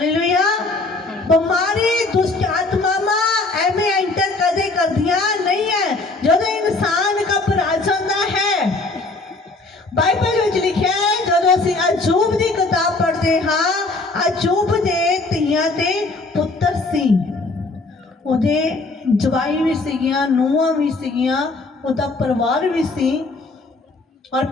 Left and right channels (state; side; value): quieter; right; 3.3 dB